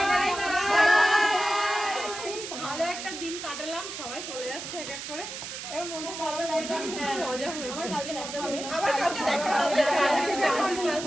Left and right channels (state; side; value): noise; right; hiss, 8 dB below the sound